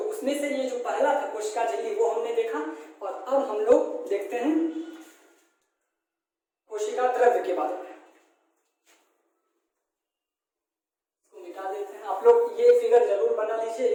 से ये जो पहला था कोशिका झिल्ली वो हमने देखा। और अब हम लोग देखते हैं कोशिका द्रव्य के बारे में। मिटा देते हैं। आप लोग ये फिगर जरूर बना लीजिए,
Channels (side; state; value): both; identical; correlation 1.00